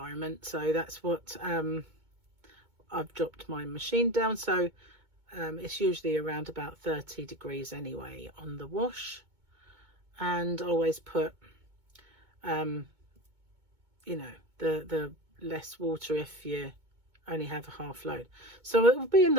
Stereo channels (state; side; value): late; left; 2.2 ms